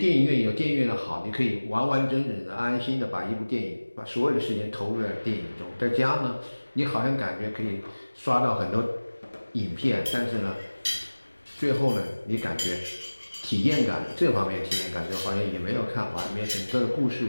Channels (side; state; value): both; inverted; correlation -1.00